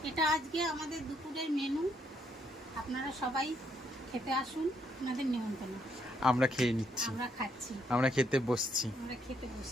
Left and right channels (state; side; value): normal; both; correlation 0.73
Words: এটা আজকে আমাদের দুপুরের মেনু। আপনারা সবাই খেতে আসুন, আপনাদের নিমন্ত্রণ। আমরা খেয়ে নিচ্ছি, আমরা খাচ্ছি, আমরা খেতে বসছি। আমরা খেতে